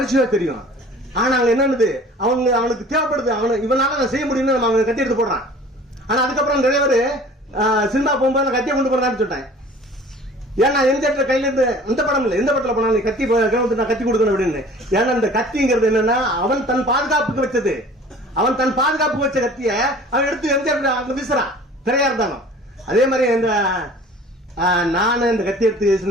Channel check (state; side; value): normal; both; correlation 0.46